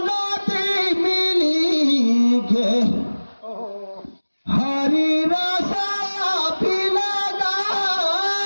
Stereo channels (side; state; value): both; inverted; correlation -1.00